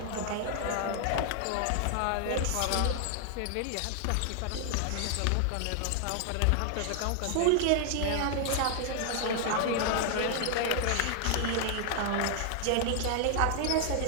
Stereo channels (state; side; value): different; both; correlation 0.00